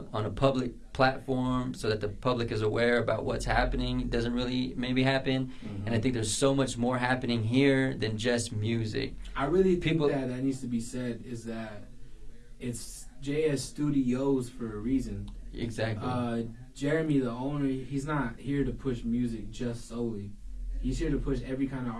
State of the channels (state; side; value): identical; both; correlation 1.00